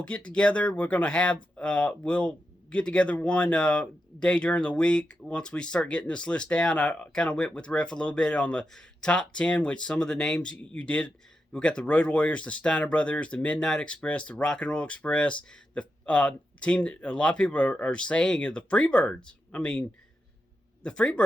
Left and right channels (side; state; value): both; normal; correlation 0.87